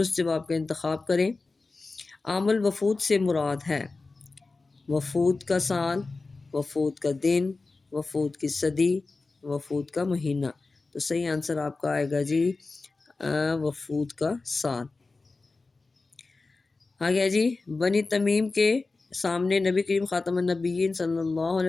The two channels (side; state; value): right; quieter; 3.7 dB